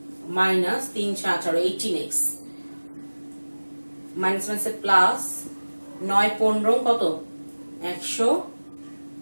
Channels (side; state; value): both; inverted; correlation -1.00